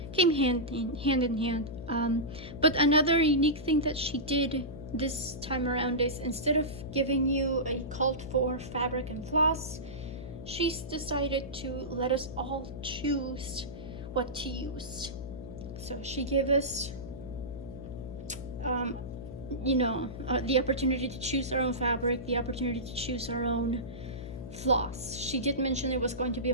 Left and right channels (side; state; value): left; noise; hum, 11 dB below the sound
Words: came hand in hand. But another unique thing that she did this time around is, instead of giving you a cult for fabric and floss, she's decided to let us all choose what to use. So she gave us the opportunity to choose our own fabric, the opportunity to choose our own floss. She did mention there was going to be a